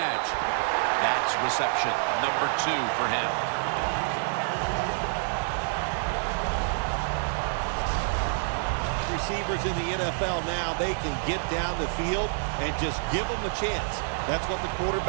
That's reception number 2 for him. Receivers in the NFL now, they can get down the field and just give them a chance. That's what the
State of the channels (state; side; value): silent; left; 57 dB below the other